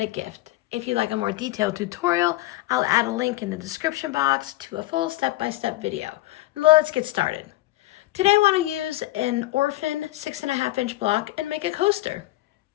gift. If you'd like a more detailed tutorial, I'll add a link in the description box to a full step-by-step video. Let's get started. Today I want to use an Orphan 6.5-inch block and make a coaster.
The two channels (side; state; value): right; quieter; 17.8 dB